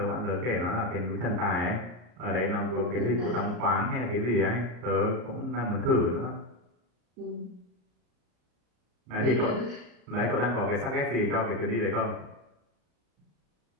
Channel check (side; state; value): left; late; 34 ms